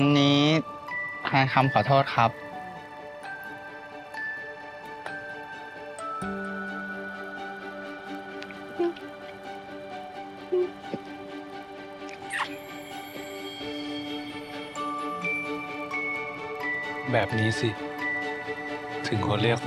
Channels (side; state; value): both; identical; correlation 1.00